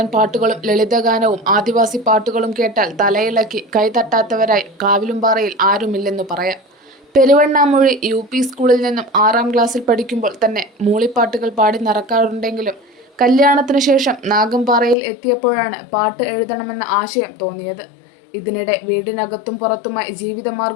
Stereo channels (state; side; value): drops out; right; at 15.0 s